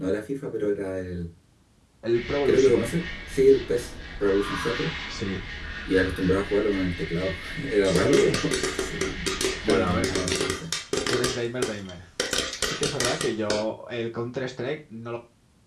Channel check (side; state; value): both; identical; correlation 1.00